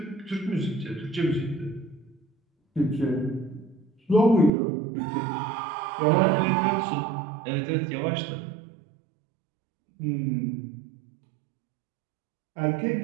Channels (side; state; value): left; drops out; at 4.5 s